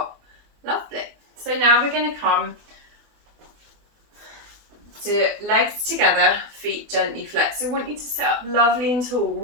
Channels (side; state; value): left; late; 24 ms